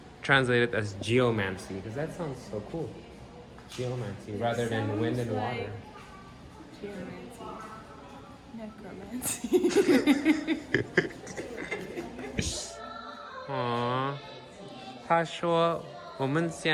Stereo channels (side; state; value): both; identical; correlation 1.00